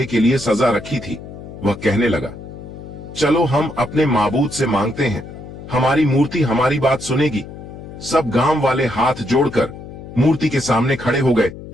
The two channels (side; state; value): left; noise; hum, 13 dB below the sound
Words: के लिए सजा रखी थी, वह कहने लगा, चलो हम अपने माबूद से मांगते हैं, हमारी मूर्ति हमारी बात सुनेगी। सब गांव वाले हाथ जोड़कर मूर्ति के सामने खड़े हो गए